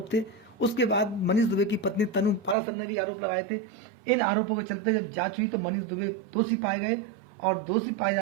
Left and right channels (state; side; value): drops out; left; at 2.6 s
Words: थे। उसके बाद मनीष दुबे की पत्नी तनु पारासर ने भी आरोप लगाए थे। इन आरोपों के चलते जब जांच हुई तो मनीष दुबे दोषी पाए गए और दोषी पाए